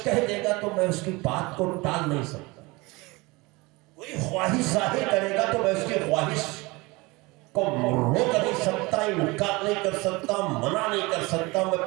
کہہ دے گا تو میں اس کی بات کو ٹال نہیں سکتا، کوئی خواہش ظاہر کرے گا تو میں اس کی خواہش کو روک نہیں سکتا، انکار نہیں کر سکتا، منع نہیں کر سکتا،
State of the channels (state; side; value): quieter; left; 23.9 dB